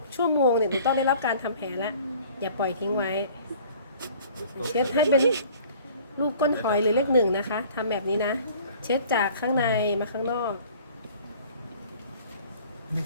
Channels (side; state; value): both; inverted; correlation -0.50